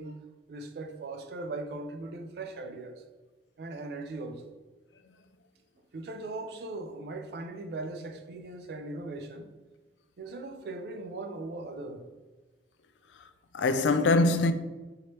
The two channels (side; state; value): both; normal; correlation 0.29